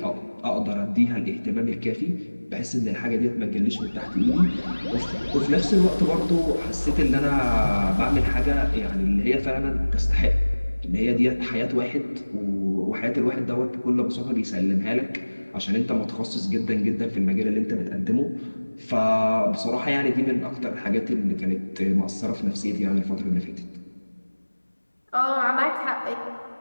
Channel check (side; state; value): both; inverted; correlation -1.00